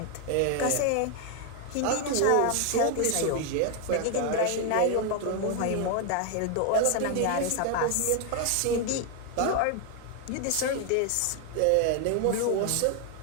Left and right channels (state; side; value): different; both; correlation 0.01